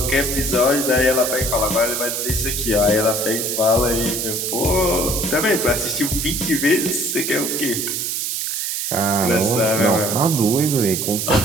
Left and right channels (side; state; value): right; noise; hiss, 2 dB below the sound